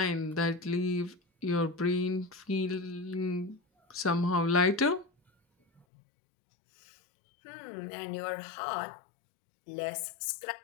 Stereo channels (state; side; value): drops out; right; at 5.9 s